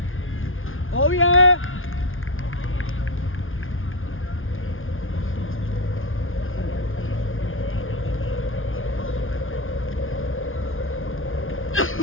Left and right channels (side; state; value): right; late; 0.59 ms